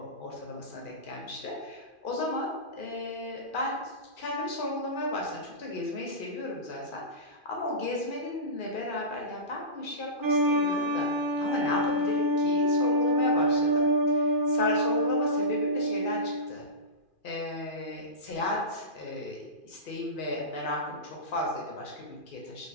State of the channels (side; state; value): right; late; 2.4 ms